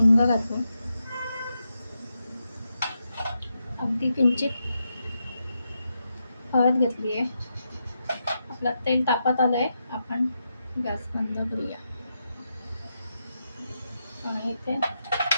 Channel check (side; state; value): both; inverted; correlation -0.85